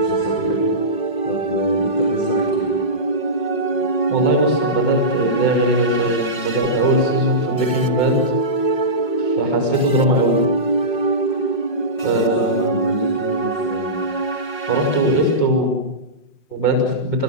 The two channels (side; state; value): right; late; 5.6 ms